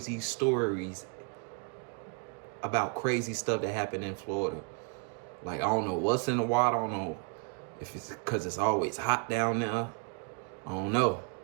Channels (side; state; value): left; quieter; 35.4 dB